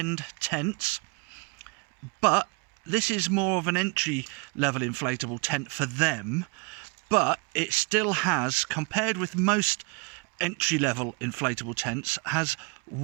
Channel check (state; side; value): quieter; left; 30.5 dB